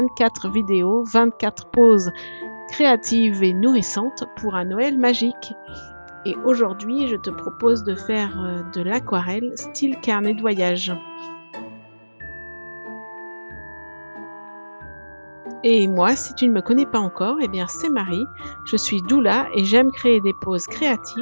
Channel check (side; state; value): both; inverted; correlation -1.00